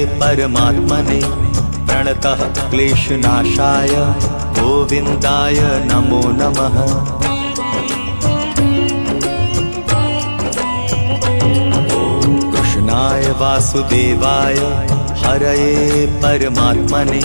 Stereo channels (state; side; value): inverted; both; correlation -1.00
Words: परमात्मने प्रणतः क्लेशनाशाय गोविन्दाय नमो नमः। कृष्णाय वासुदेवाय हरये परमात्मने